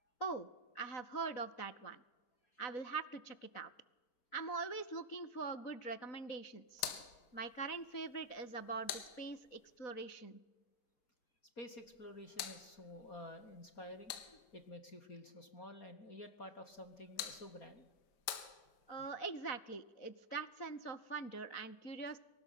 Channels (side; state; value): right; late; 4.9 ms